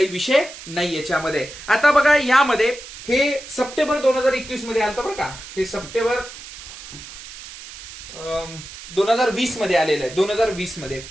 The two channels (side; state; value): right; noise; hiss, 14 dB below the sound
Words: विषय नाही याच्यामध्ये. आता बघा यामध्ये हे सप्टेंबर 2021 मध्ये आलं बरं का. हे सप्टेंबर 2020 मध्ये आलेलं आहे. 2020 मध्ये.